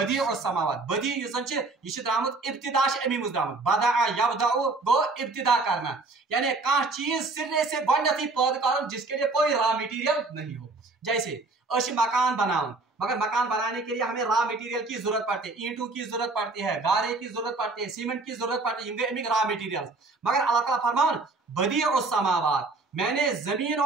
और समावात। बदी ये द्रामुत इब्तिदा अमीमुज द्रामुत, बदा यबदउ गो इब्तिदा करना, यानी कह चीज सिरे से गोडनेथी पैदा कर जिसके लिए कोई रॉ मटेरियल नहीं हो। जैसे मकान बनाओ, मगर मकान बनाने के लिए हमें रॉ मटेरियल की जरूरत पड़ती है, ईंटों की जरूरत पड़ती है, गारे की जरूरत पड़ती है, सीमेंट की जरूरत पड़ती है, रॉ मटेरियल। मगर अल्लाह ताला फरमान बदीउस समावात, मैंने जमीन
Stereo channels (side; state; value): left; quieter; 3.5 dB